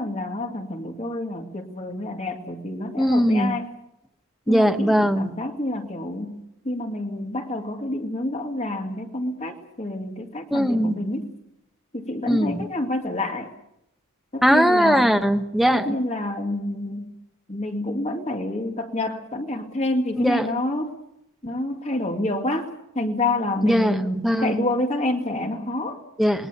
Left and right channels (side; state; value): both; normal; correlation 0.79